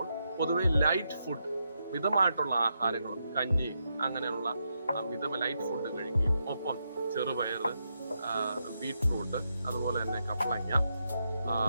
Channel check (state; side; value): inverted; both; correlation -0.83